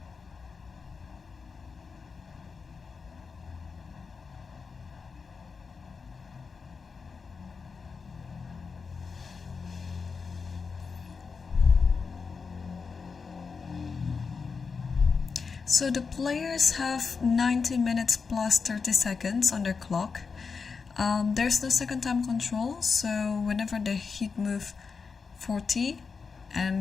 So the players have 90 minutes plus 30 seconds on their clock. There's no second time control, so whenever they hit move 40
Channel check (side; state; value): right; quieter; 5.2 dB